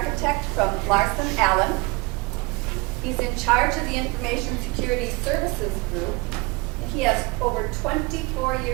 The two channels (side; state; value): left; quieter; 25.9 dB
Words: from Larson Allen. He's in charge of the Information Security Services Group. He has over 24